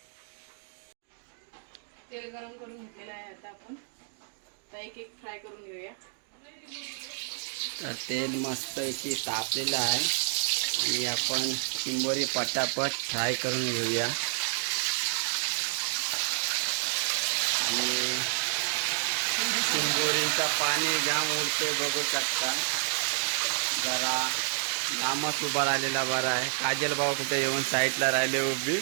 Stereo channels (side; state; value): left; silent; digital silence